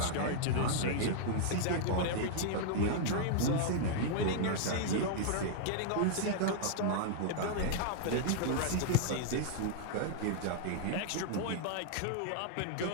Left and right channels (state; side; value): different; both; correlation -0.01